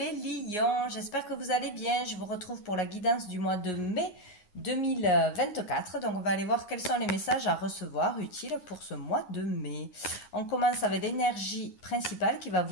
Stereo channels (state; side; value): late; right; 9.6 ms